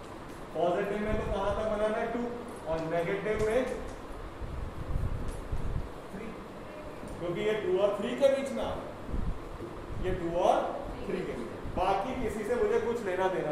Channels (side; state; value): both; identical; correlation 1.00